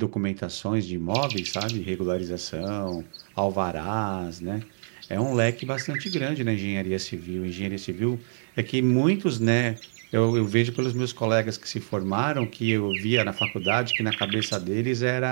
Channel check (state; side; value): silent; left; digital silence